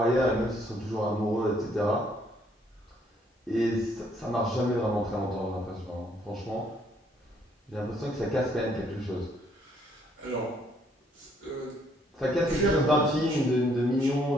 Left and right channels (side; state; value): both; normal; correlation 0.67